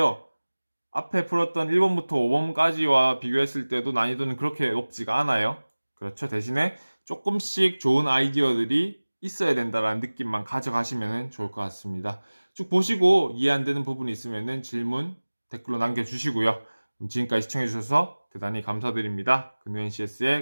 앞에 풀었던 1번부터 5번까지와 비교했을 때도 난이도는 그렇게 높지가 않아요. 그렇죠. 대신에 조금씩 좋은 아이디어들이 있어야 된다라는 느낌만 가져가시면 좋을 것 같습니다. 쭉 보시고 이해 안 되는 부분이 있으면 질문 댓글로 남겨주시고요. 지금까지 시청해주셔서 대단히 감사드립니다.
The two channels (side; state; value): both; inverted; correlation -1.00